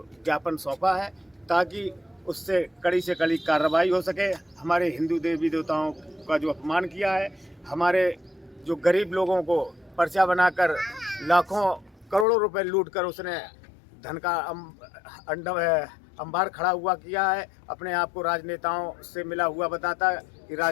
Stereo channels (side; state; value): right; drops out; at 12.2 s